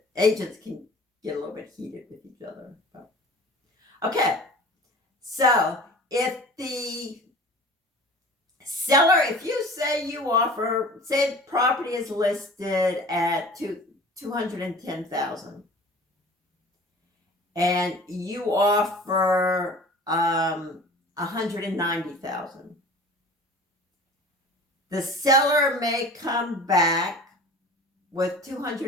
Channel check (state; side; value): normal; both; correlation 0.42